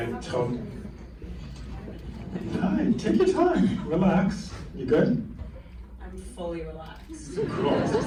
told. Hi, take your time. Relax. You good? I'm fully relaxed. Cool. It's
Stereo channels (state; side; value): identical; both; correlation 1.00